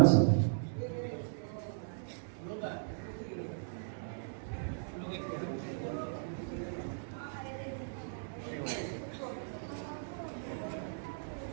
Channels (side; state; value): left; silent; digital silence